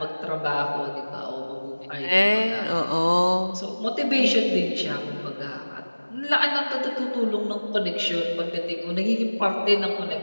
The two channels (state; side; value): inverted; both; correlation -1.00